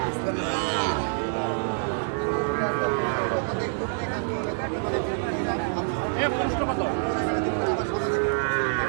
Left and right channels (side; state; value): left; silent; digital silence